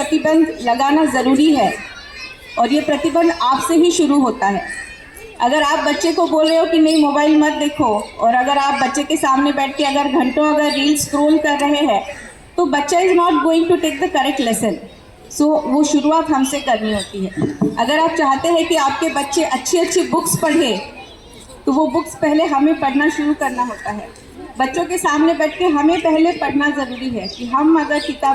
लगाना ज़रूरी है और ये प्रतिबंध आपसे ही शुरू होता है। अगर आप बच्चे को बोल रहे हो कि नहीं मोबाइल मत देखो, और अगर आप बच्चे के सामने बैठ के अगर घंटों अगर रील स्क्रॉल कर रहे हैं, तो बच्चा is not going to take the correct lesson. So वो शुरुआत हमसे करनी होती है। अगर आप चाहते हैं कि आपके बच्चे अच्छी अच्छी बुक्स पढ़े, तो वो बुक्स पहले हमें पढ़ना शुरू करना होता है। बच्चों के सामने बैठ के हमें पहले पढ़ना ज़रूरी है कि हम अगर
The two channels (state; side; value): identical; both; correlation 1.00